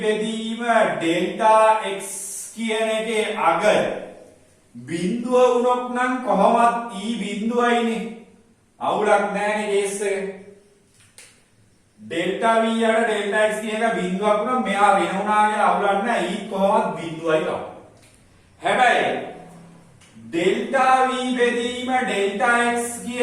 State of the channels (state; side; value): identical; both; correlation 1.00